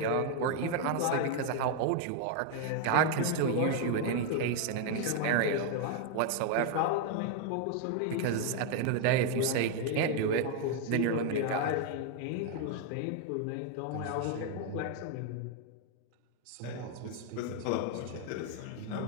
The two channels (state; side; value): different; both; correlation 0.00